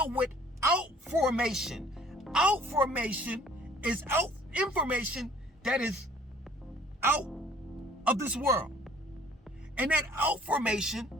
with outformation. Outformation is information that is out of this world. And that outformation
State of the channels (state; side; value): normal; both; correlation 0.56